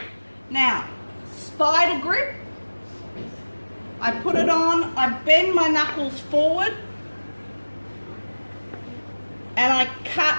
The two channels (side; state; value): both; inverted; correlation -1.00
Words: Now, spider grip. I put it on, I bend my knuckles forward, and I